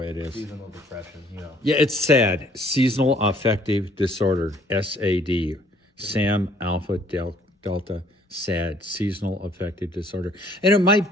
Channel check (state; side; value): normal; both; correlation 0.60